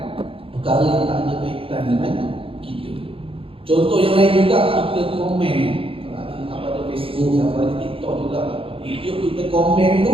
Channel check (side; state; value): left; late; 0.27 ms